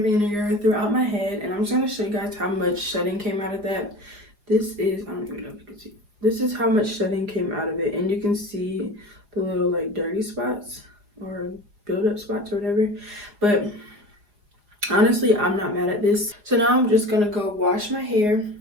vinegar throughout my head, and I'm just gonna show you guys how much shedding came out of that. This is, I don't even know if you can see. This is how much shedding came out of it, and you can see the little like dirty spots or build-up spots or whatever. But honestly, I'm not mad at this. So now I'm just gonna go wash my hair.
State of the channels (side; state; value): left; late; 4.9 ms